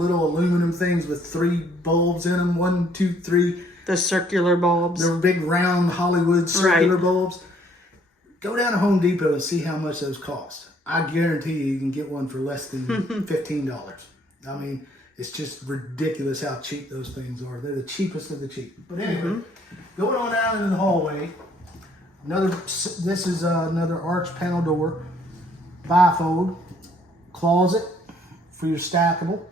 aluminum things with 3 bulbs in them. 1, 2, 3. The circular bulbs. They're big round Hollywood circular bulbs. Go down to Home Depot and see how much those cost. I guarantee you can get one for less than $15. I mean, it's just ridiculous how cheap those things are. They're the cheapest of the cheap. But anyway, going on out into the hallway, this is another arch panel door, bifold, closet for your stackable.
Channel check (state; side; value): normal; both; correlation 0.64